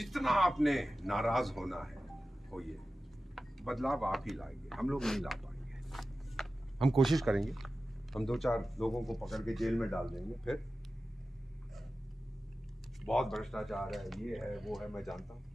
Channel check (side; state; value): both; normal; correlation 0.94